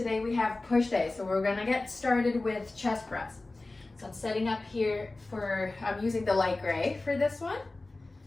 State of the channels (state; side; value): quieter; right; 3.1 dB